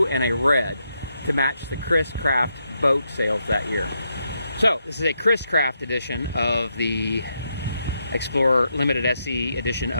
and a red to match the chriscraft boat sales that year. So this is a chriscraft edition of the Explorer Limited SE edition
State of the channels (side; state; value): both; inverted; correlation -0.81